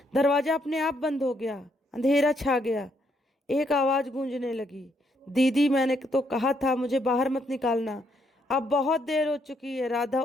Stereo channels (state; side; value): normal; both; correlation 0.74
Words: दरवाजा अपने आप बंद हो गया। अंधेरा छा गया। एक आवाज गूंजने लगी, दीदी, मैंने तो कहा था मुझे बाहर मत निकालना, अब बहुत देर हो चुकी है। राधा